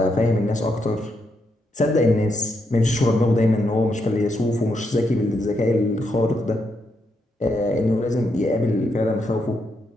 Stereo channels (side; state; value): both; normal; correlation 0.80